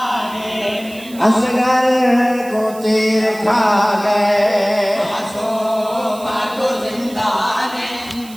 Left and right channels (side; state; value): right; noise; hiss, 19 dB below the sound